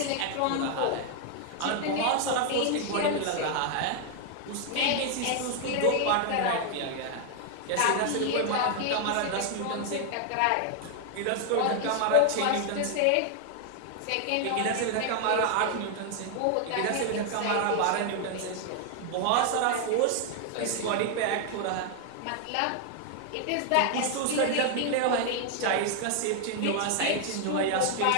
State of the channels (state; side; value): different; both; correlation 0.00